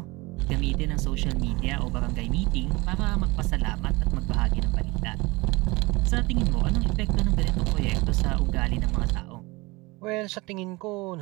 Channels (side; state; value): left; quieter; 23.6 dB